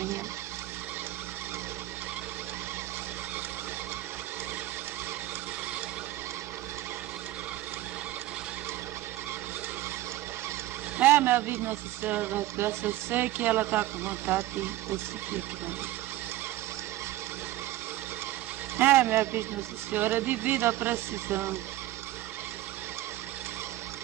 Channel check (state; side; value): quieter; left; 15.5 dB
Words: Minha vida, Nossa Senhora das Graças, eu sei que ela está com vontade de eu seguir aqui na vida. Minha vida, Nossa Senhora, devido à precisão.